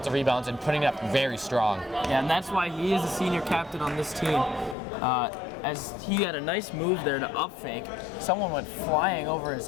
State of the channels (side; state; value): right; drops out; at 4.8 s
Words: rebounds and putting it up very strong. Yeah, and that's why he is the senior captain on this team. As he had a nice move there to up fake. Someone went flying over his